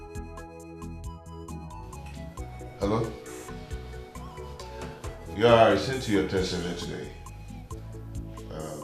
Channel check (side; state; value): both; identical; correlation 1.00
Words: Hello? Yeah, I sent you a text earlier today.